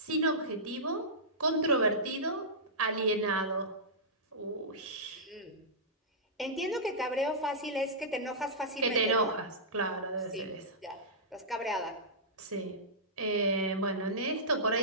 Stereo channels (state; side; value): normal; both; correlation -0.15